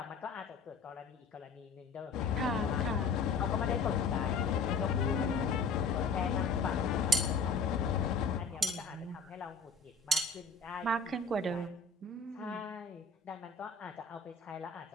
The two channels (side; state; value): right; quieter; 4.1 dB